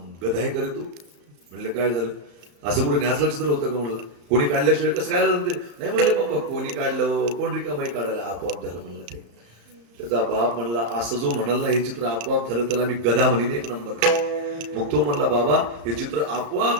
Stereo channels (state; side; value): late; left; 35 ms